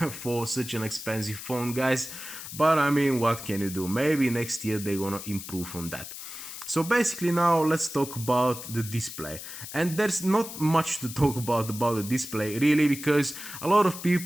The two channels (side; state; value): left; noise; hiss, 11 dB below the sound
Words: for such an expensive phone, guys. But I mean, what can you do? Maybe next year they're gonna improve on that. So basically now let's talk about the display, and there's not much to talk about the display really, because a lot of